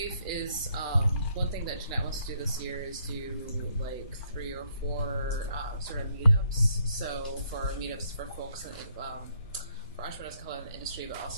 is one thing that Jeanette wants to do this year is do like 3 or 4 sort of meetups. So for meetups for folks in, for entrepreneurs of color in the industry, but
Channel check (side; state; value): both; inverted; correlation -0.71